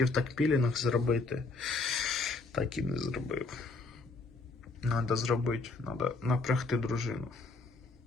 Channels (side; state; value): right; quieter; 3.6 dB